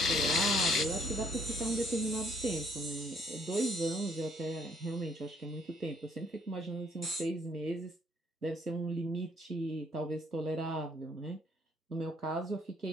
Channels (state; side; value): normal; both; correlation 0.66